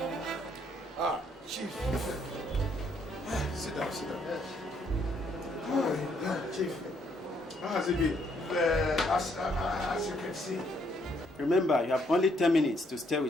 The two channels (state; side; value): normal; both; correlation 0.70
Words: Chief. Sit down. Chief. How has it been? As you can see. Remember, you have only 10 minutes to stay